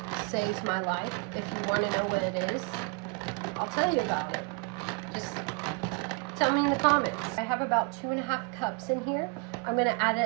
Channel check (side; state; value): left; quieter; 31.5 dB